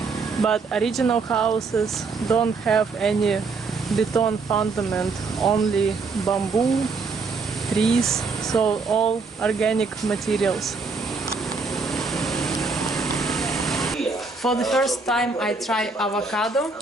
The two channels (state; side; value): quieter; left; 4.3 dB